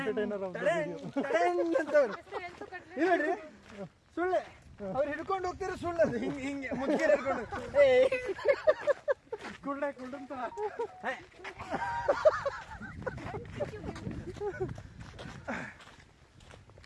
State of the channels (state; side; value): identical; both; correlation 1.00